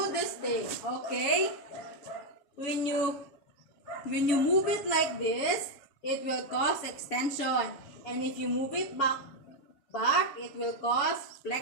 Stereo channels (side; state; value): right; late; 7.0 ms